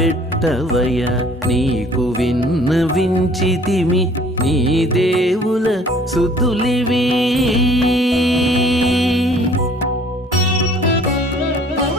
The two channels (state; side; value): normal; both; correlation 0.54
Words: నీకు విన్నవించితిమి నీ దేవుల సుద్దులివి